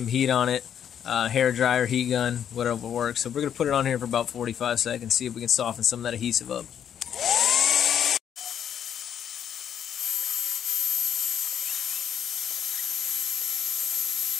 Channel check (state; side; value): quieter; right; 9.0 dB